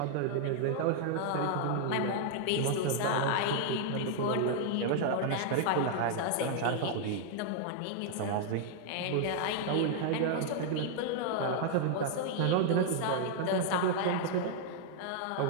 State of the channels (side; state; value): both; different; correlation -0.01